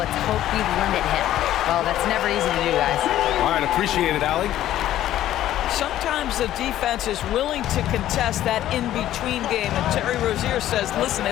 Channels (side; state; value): right; quieter; 12.9 dB